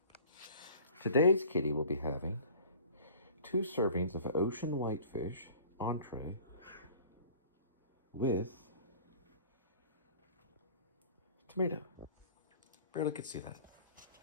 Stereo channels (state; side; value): inverted; both; correlation -0.47